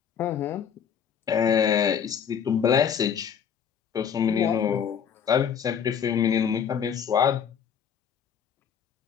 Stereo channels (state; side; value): quieter; right; 7.8 dB